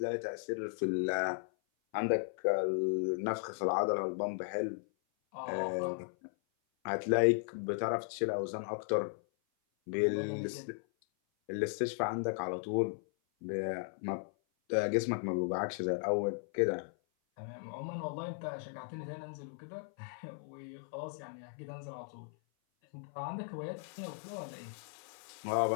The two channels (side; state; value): right; silent; 54 dB below the other